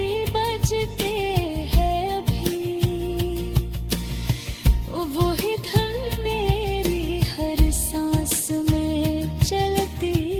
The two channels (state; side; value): identical; both; correlation 1.00